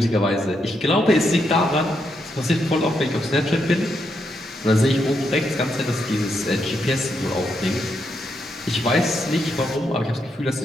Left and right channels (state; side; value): normal; both; correlation 0.80